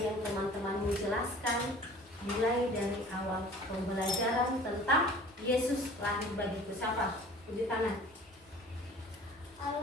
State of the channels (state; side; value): normal; both; correlation 0.46